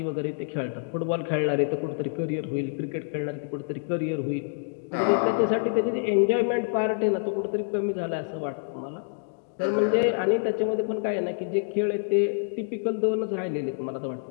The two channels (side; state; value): right; silent; digital silence